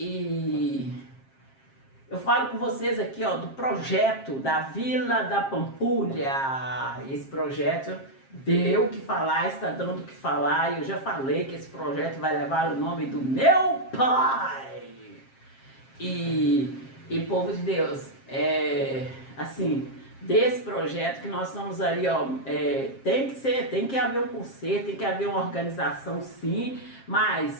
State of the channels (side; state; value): right; late; 7.5 ms